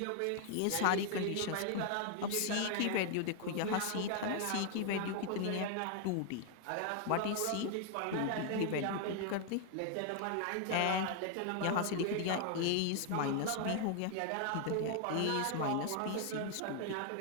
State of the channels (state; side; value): different; both; correlation 0.00